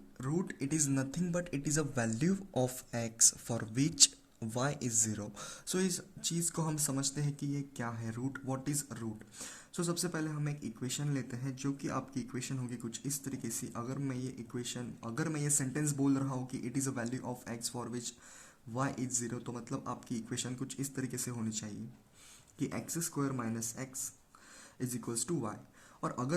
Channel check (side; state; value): both; identical; correlation 1.00